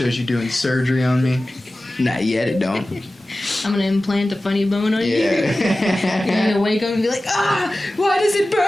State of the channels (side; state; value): both; normal; correlation 0.96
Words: you doing surgery on me. Not yet, it don't. I'm gonna implant a funny bone on you. Yeah. You're gonna wake up and be like, why does it